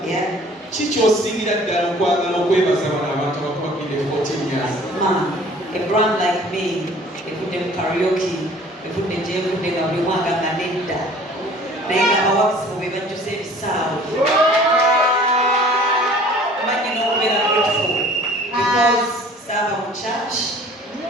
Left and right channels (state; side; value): normal; both; correlation 0.50